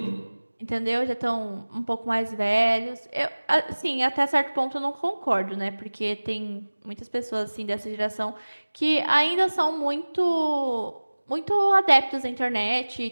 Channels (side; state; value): both; inverted; correlation -1.00